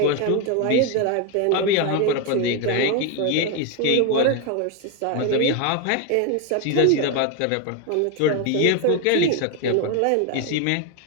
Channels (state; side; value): different; both; correlation 0.01